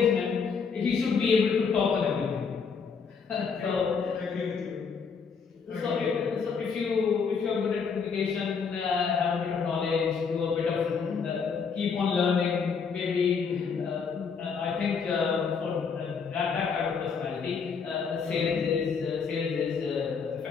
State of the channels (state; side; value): quieter; right; 5.8 dB